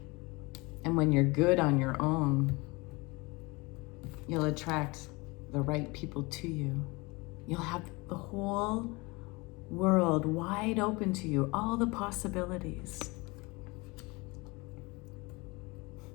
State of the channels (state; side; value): quieter; right; 25.2 dB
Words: And when you're good on your own, you'll attract the right people to you. You'll have the whole world wide open to you, all the possibilities.